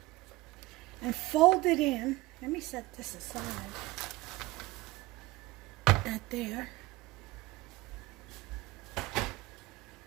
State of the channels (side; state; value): left; quieter; 20.3 dB